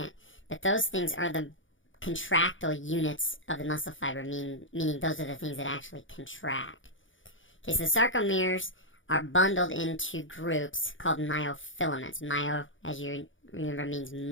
But those things are the contractile units of the muscle fiber, meaning those are the things that actually contract. Okay, so the sarcomeres are bundled into groups called myofilaments. Myo, as you remember, means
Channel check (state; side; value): late; right; 0.56 ms